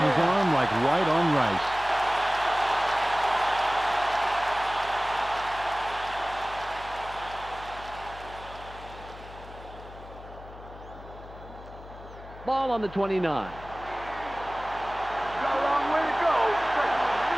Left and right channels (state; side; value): noise; left; hum, 16 dB below the sound